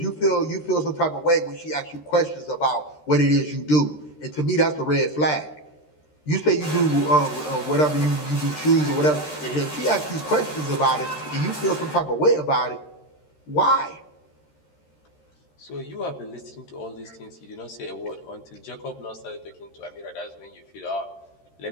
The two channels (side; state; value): right; late; 13 ms